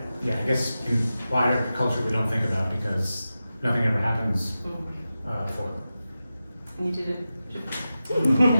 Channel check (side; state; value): both; inverted; correlation -0.93